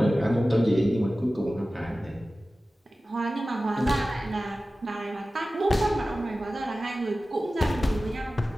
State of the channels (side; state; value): both; normal; correlation 0.96